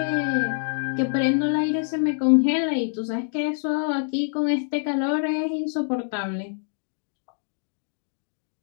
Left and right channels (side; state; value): right; silent; digital silence